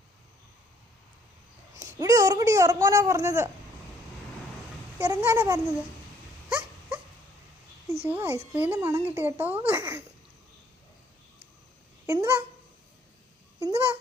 ഇവിടെ ഉറങ്ങടി, ഉറങ്ങാനാ പറഞ്ഞത്, ഇറങ്ങാനാ പറഞ്ഞത്. അയ്യോ ഐസ്ക്രീമിൻ്റെ മണം കിട്ടി കേട്ടോ. എന്തുവാ എന്തുവാ?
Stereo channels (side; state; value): both; normal; correlation 0.64